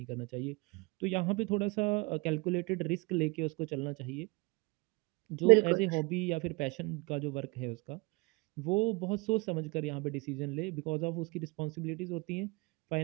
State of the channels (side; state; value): left; quieter; 26.7 dB